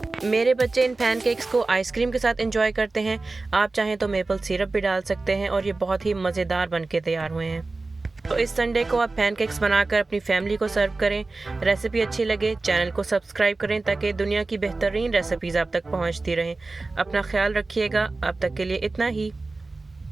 मेरे बच्चे इन पैनकेक्स को आइसक्रीम के साथ एंजॉय करते हैं। आप चाहें तो मेपल सिरप भी डाल सकते हैं और ये बहुत ही मज़ेदार बन के तैयार हुए हैं। तो इस संडे को आप पैनकेक्स बनाकर अपनी फैमिली को सर्व करें। रेसिपी अच्छी लगे चैनल को सब्सक्राइब करें, ताकि दुनिया की बेहतरीन रेसिपीज़ आप तक पहुंचती रहें। अपना ख्याल रखिएगा। अब तक के लिए इतना ही।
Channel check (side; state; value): left; quieter; 3.4 dB